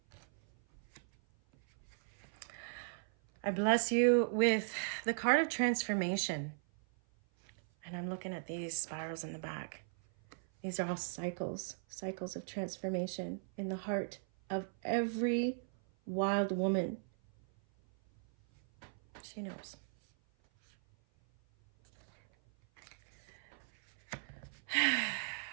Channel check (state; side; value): silent; left; 53 dB below the other